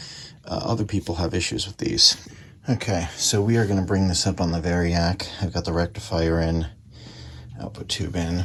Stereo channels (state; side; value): identical; both; correlation 1.00